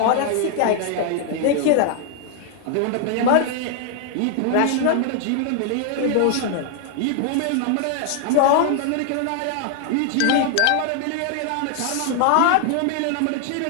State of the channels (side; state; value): both; different; correlation 0.00